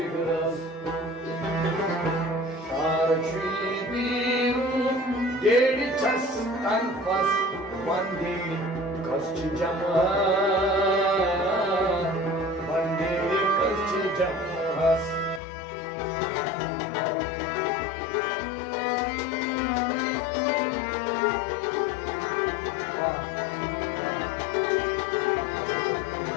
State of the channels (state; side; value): drops out; right; at 15.4 s